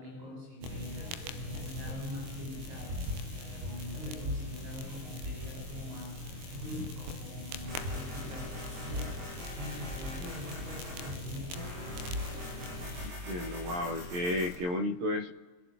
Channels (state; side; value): late; left; 23 ms